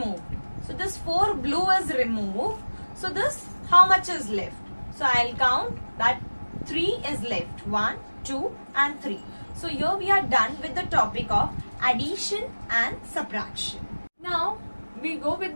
So this 4 blue is removed. So this, how much is left? So I'll count that 3 is left. 1, 2 and 3. So here we are done with the topic of addition and subtraction. Now we go with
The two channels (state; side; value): inverted; both; correlation -1.00